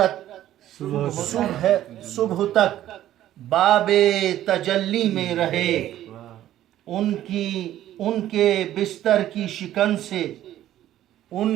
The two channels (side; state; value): left; quieter; 12.8 dB